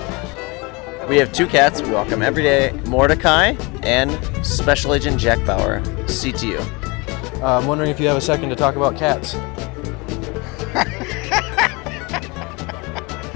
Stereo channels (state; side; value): quieter; right; 27.2 dB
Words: We have 2 cats. We walk them every day. Mordecai and Special Agent Jack Bauer, CTU. I'm wondering if you have a second to talk about cats.